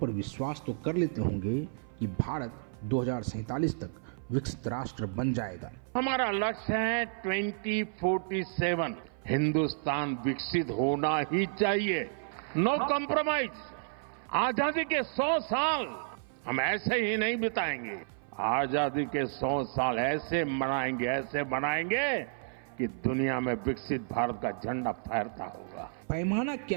विश्वास तो कर लेते होंगे कि भारत 2047 तक विकसित राष्ट्र बन जाएगा। हमारा लक्ष्य है 2047 हिंदुस्तान विकसित होना ही चाहिए, नो कॉम्प्रोमाइज। आजादी के 100 साल हम ऐसे ही नहीं बिताएंगे, आजादी के 100 साल ऐसे बनाएंगे कि दुनिया में विकसित भारत का झंडा फहरता होगा। पैमाना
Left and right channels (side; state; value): left; silent; 55 dB below the other